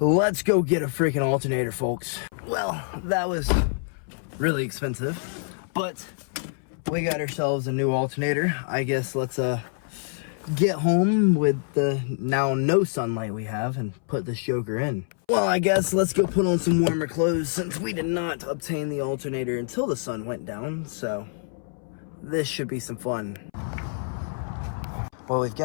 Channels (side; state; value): right; silent; 61 dB below the other